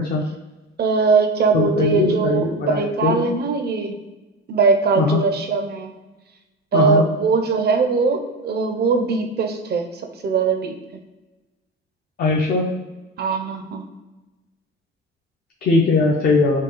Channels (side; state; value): both; normal; correlation 0.24